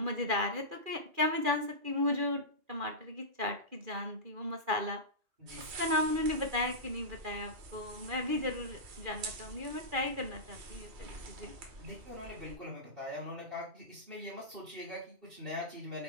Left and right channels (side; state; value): left; late; 2.4 ms